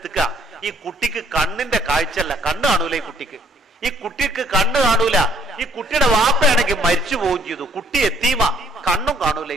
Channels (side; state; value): both; normal; correlation 0.62